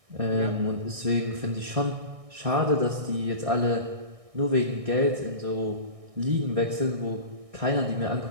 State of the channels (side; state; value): left; late; 1.6 ms